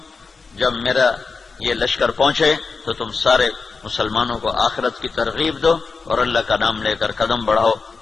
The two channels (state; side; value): quieter; right; 4.6 dB